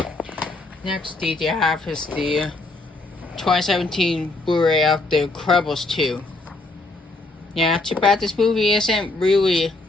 Next DVD I have is the 2017 Blu-ray of The Incredibles 2. Yeah, too bad this movie isn't really.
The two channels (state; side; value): quieter; right; 3.1 dB